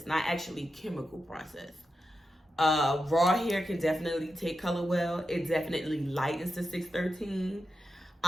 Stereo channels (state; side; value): normal; both; correlation 0.89